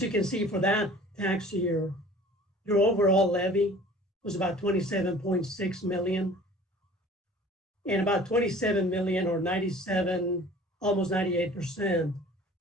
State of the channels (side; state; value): both; normal; correlation 0.47